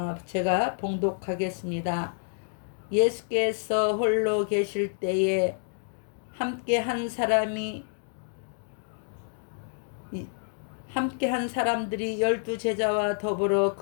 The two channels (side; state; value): right; silent; digital silence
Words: 제가 봉독하겠습니다. 예수께서 홀로 계실 때에 함께 한 사람들이 12제자와 더불어